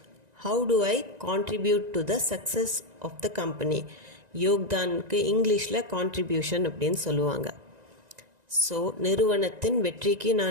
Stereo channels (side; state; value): left; late; 1.9 ms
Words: How to I contribute to the success of the company. யோக்தானுக்கு இங்கிலீஷில் கான்ட்ரிபியூஷன் அப்படின்னு சொல்லுவாங்க. ஸோ நிறுவனத்தின் வெற்றிக்கு